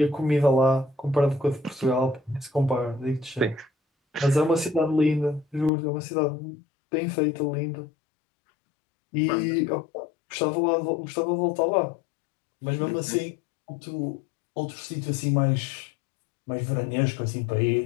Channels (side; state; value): right; drops out; at 5.7 s